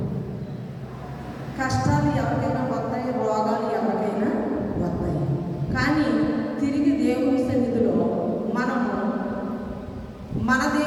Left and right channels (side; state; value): both; identical; correlation 1.00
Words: కష్టాలు ఎవరికైనా వస్తాయి, రోగాలు ఎవరికైనా వస్తాయి. కానీ తిరిగి దేవుని సన్నిధిలో మనము మన